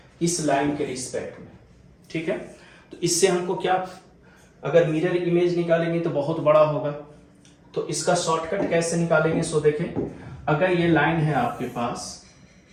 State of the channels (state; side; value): identical; both; correlation 1.00